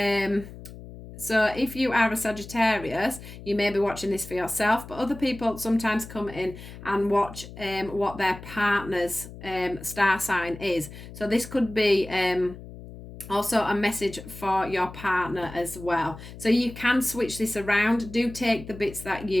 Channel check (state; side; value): noise; left; hum, 15 dB below the sound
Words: if you are a Sagittarius, you may be watching this for yourself, but other people sometimes come in and watch what their partner's star sign is. So this could be also a message for your partner as well. So you can switch this around. Do take the bits that